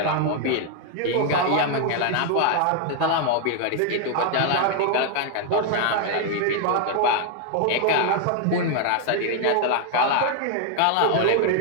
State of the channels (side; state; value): both; different; correlation 0.00